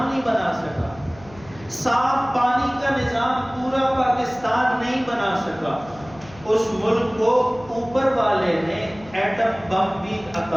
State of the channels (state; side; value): noise; left; hum, 21 dB below the sound